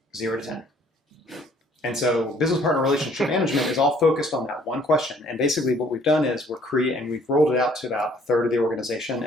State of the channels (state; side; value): normal; both; correlation 0.59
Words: 0 to 10? And so business partner relationship management is all focused on that one question. And basically what we've done is we've rolled it out to about a third of the organization,